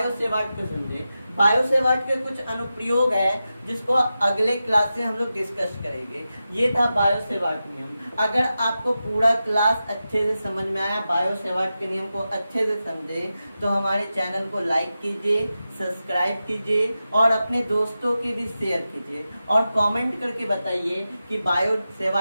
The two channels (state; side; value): inverted; both; correlation -0.92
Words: सेवार्ट को समझे। बायो सेवार्ट के कुछ अनुप्रयोग है जिसको अगले क्लास से हम लोग डिस्कस करेंगे। ये था बायो सेवार्ट नियम। अगर आपको पूरा क्लास अच्छे से समझ में आया, बायो सेवार्ट के नियम को अच्छे से समझे, तो हमारे चैनल को लाइक कीजिए, सब्सक्राइब कीजिए और अपने दोस्तों के भी शेयर कीजिए। और कमेंट करके बताइए कि बायो